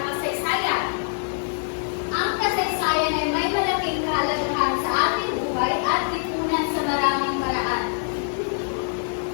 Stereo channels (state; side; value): silent; right; 62 dB below the other